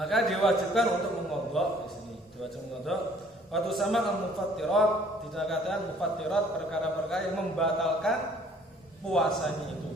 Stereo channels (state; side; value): normal; both; correlation 0.58